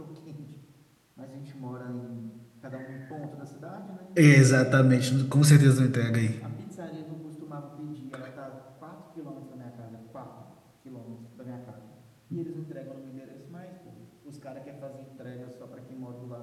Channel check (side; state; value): both; identical; correlation 1.00